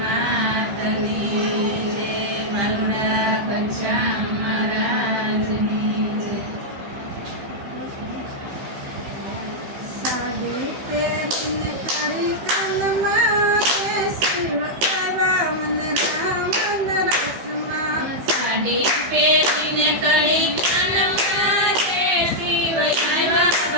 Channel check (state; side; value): late; left; 15 ms